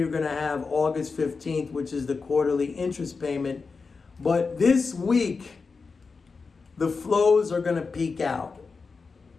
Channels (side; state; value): right; quieter; 4.6 dB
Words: going to have August 15th, which is the quarterly interest payment. But this week, the flows are going to peak out.